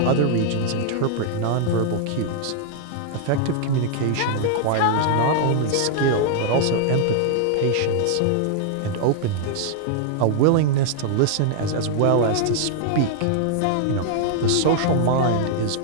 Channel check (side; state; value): both; different; correlation -0.01